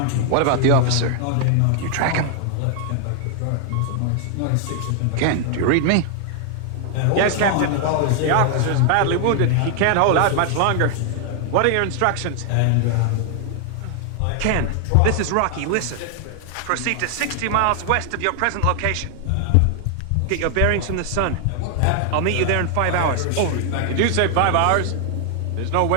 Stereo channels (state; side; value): different; both; correlation 0.00